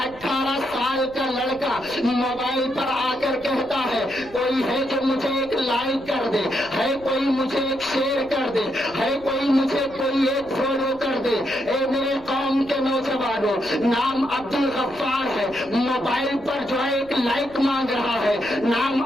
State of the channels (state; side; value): noise; left; rumble, 23 dB below the sound